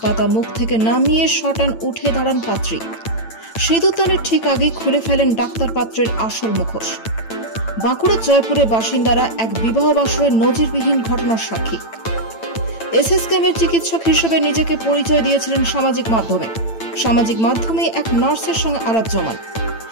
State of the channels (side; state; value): right; late; 8.9 ms